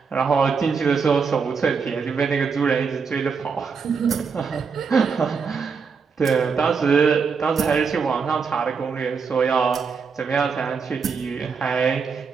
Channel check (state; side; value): quieter; left; 5.6 dB